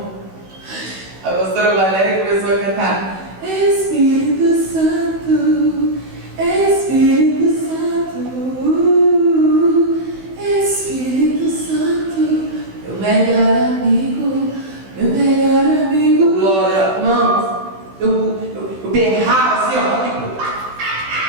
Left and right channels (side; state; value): left; late; 16 ms